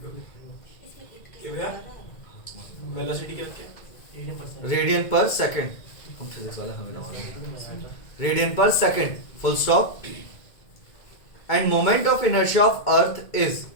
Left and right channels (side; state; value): right; late; 2.0 ms